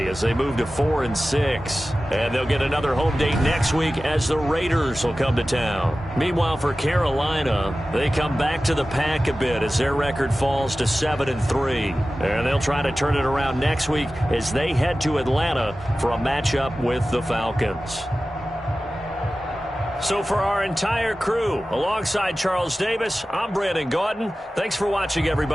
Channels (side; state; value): both; normal; correlation 0.95